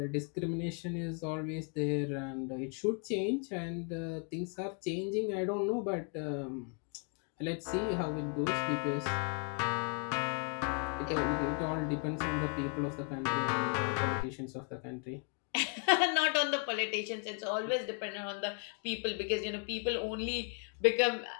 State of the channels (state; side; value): quieter; right; 38.9 dB